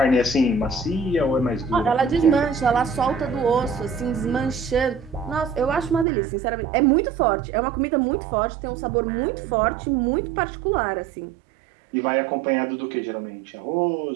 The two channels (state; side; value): drops out; left; at 6.1 s